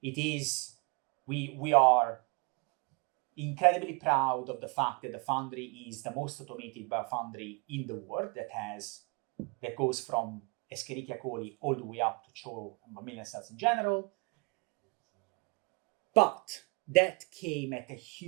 It is, we are incredibly proud of the fact that the foundry is the most automated biofoundry in the world that goes from Escherichia coli all the way up to CHO and mammalian cells in general. But that came at a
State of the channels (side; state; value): left; quieter; 30.9 dB